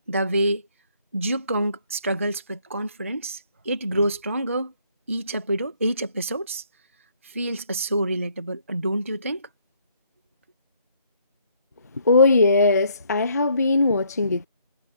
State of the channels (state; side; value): inverted; both; correlation -0.66